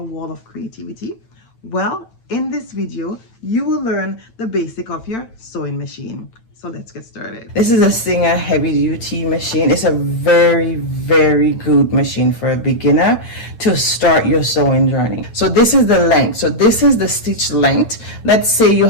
of creativity? Well, in this video, you will learn the basic of your sewing machine. So let's get started. This is a Singer heavy duty machine. It's a very good machine for a beginner to start your sewing journey. So this is the length. So this is the stitch length. Let's say you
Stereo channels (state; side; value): late; right; 8.9 ms